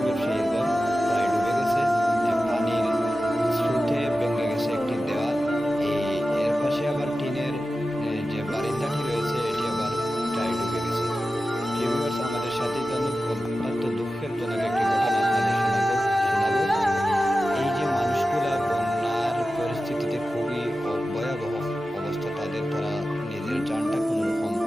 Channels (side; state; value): both; normal; correlation 0.94